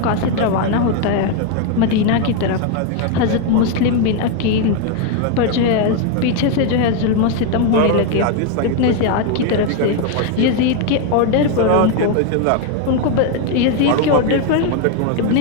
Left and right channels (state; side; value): different; both; correlation 0.01